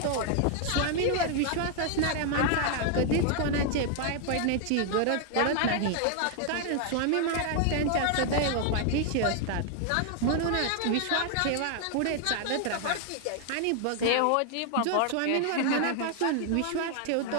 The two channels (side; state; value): both; different; correlation 0.00